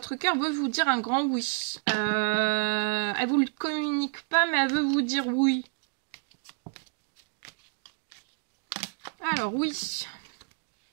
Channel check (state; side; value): quieter; left; 38.0 dB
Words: cœur veut vous dire un grand oui. Elle vous le communique pas, mais elle veut vous dire oui. Alors, oui.